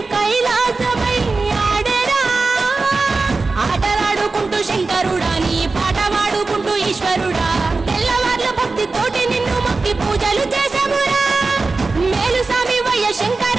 కైలాసమై ఆడెరా ఆటలాడుకుంటూ శంకరుడా నీ పాట వాడుకుంటూ ఈశ్వరుడా తెల్లవార్ల భక్తి తోటి నిన్ను మొక్కి పూజలు చేసామురా మేలు స్వామి వయ్య శంకర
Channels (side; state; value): left; quieter; 3.8 dB